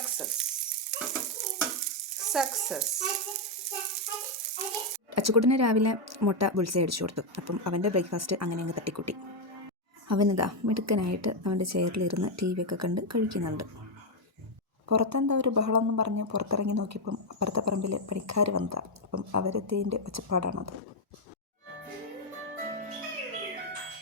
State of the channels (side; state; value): both; normal; correlation 0.01